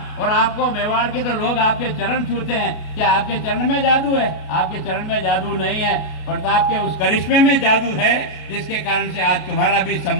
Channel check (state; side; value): late; right; 33 ms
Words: और आपको मेवाड़ के तो लोग आपके चरण छूते हैं, क्या आपके चरण में जादू है? आपके चरण में जादू नहीं है, प्रताप के उस करिश्मे में जादू है, जिसके कारण से आज तुम्हारा भी